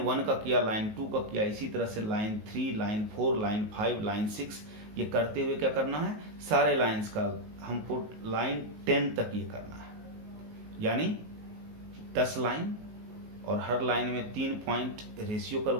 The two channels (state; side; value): late; left; 19 ms